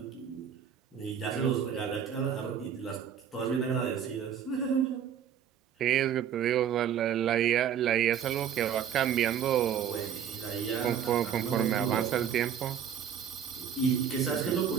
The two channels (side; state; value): left; quieter; 8.6 dB